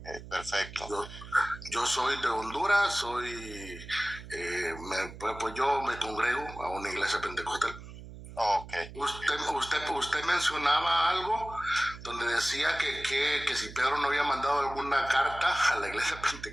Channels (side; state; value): right; noise; hum, 14 dB below the sound